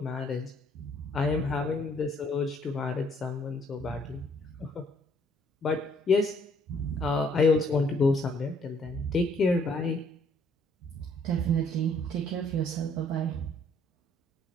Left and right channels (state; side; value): normal; both; correlation 0.64